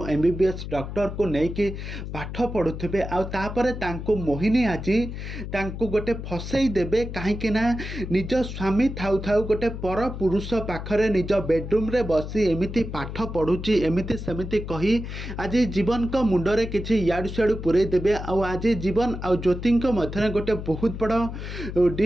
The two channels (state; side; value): noise; left; hum, 8 dB below the sound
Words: MBBS डॉक्टर को लेकिन पाठ पढ़ुवे आपर मोहिनी आज गोटे फसई देवे कहीं निज स्वामी थाउ थाउ गोटे पर पुरुष पाखरे निज बेडरूम रे बसी एमती पाठ पढ़ुची एमती सेमती कही आज जीवन को मुंडरे किसी याडू सियाड़ू पूरे देवे आज जीवन आ ज्योति मध्य गोटे बहुत बड़